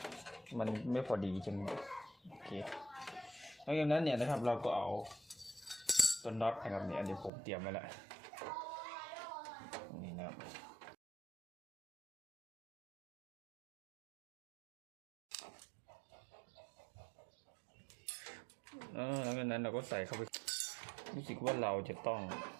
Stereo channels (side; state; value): left; drops out; at 7.3 s